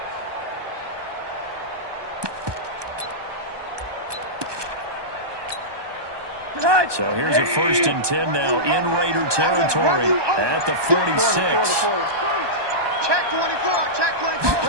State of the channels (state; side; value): late; left; 1.2 ms